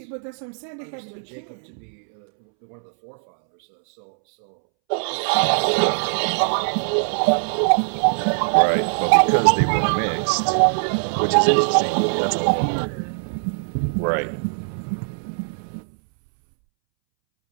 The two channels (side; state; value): left; silent; 65 dB below the other